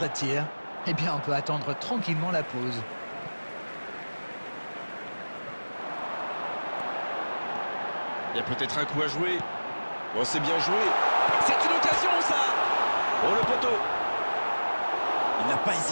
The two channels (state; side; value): inverted; both; correlation -1.00